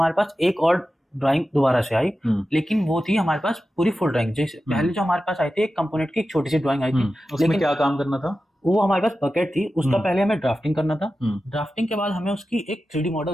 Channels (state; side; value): normal; both; correlation 0.93